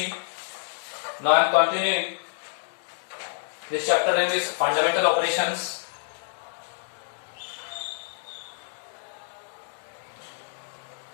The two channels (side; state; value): right; silent; digital silence